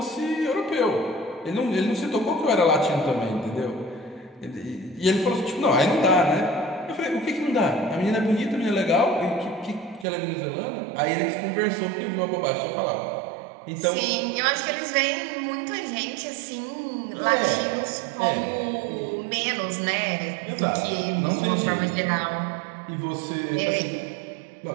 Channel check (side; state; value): left; drops out; at 10.1 s